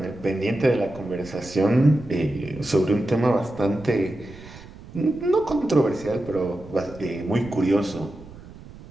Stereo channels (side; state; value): right; noise; rumble, 18 dB below the sound